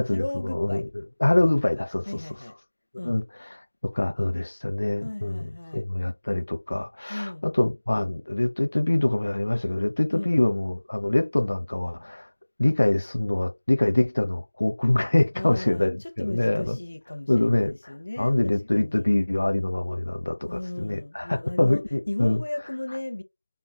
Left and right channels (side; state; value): both; inverted; correlation -1.00